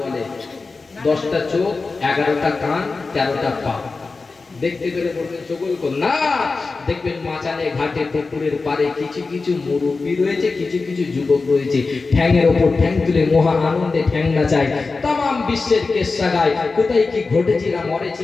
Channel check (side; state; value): right; quieter; 4.0 dB